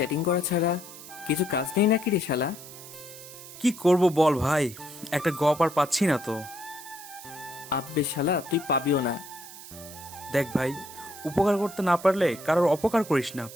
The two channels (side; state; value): right; noise; hiss, 15 dB below the sound